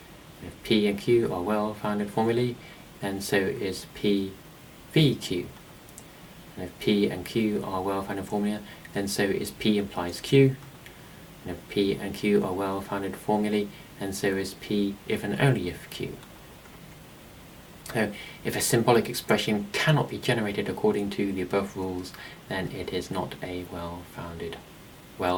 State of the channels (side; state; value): both; identical; correlation 1.00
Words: if P and Q are well-founded formulae, then so is P v Q. And if P and Q are well-founded formula, then so is P implies Q. And if P and Q are well-founded formulae, then so is P if and only if Q. So if a symbolic expression cannot be generated according to the above rules, then it is not a well-founded,